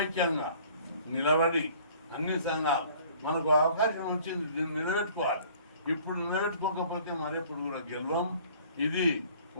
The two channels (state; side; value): inverted; both; correlation -0.53